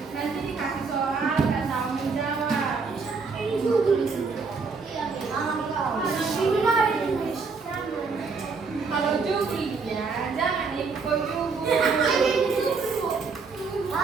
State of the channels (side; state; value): left; quieter; 4.7 dB